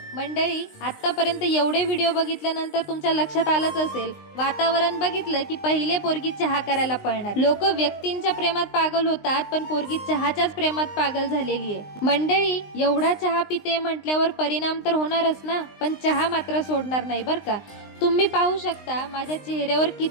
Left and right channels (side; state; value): right; late; 19 ms